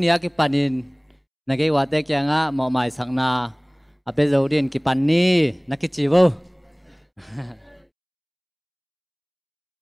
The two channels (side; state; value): both; identical; correlation 1.00